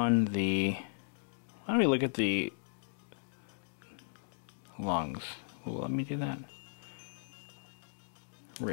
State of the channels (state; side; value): silent; right; digital silence